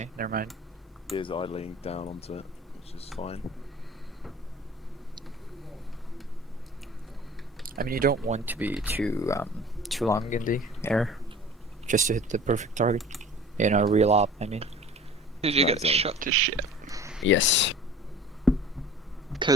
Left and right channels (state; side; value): normal; both; correlation 0.44